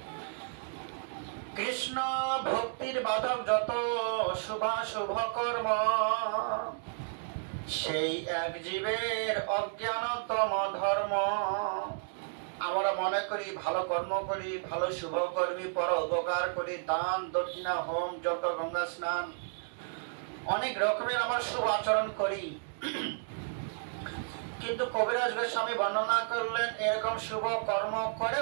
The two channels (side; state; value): left; silent; digital silence